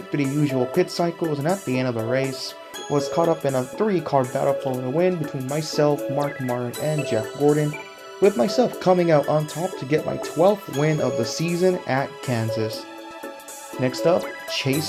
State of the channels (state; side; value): identical; both; correlation 1.00